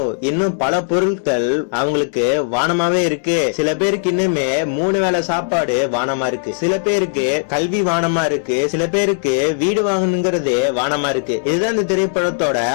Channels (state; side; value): silent; right; digital silence